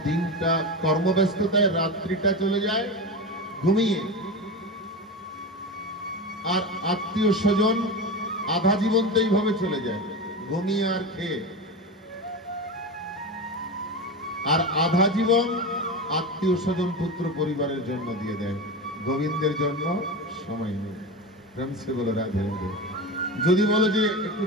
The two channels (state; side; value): normal; both; correlation 0.22